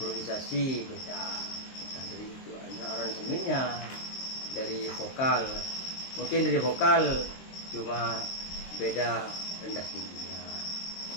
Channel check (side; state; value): right; late; 23 ms